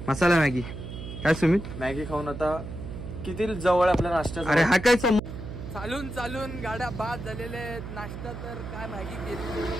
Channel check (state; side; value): noise; right; hum, 9 dB below the sound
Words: मसाला मॅगी. काय सुमित, मॅगी खाऊन आता किती जवळ आपल्या नाश्ता. अरे हा काय चालून चालून गाड्या बाद झालेल्या आहेत. नाश्ता तर काय मॅगी केली.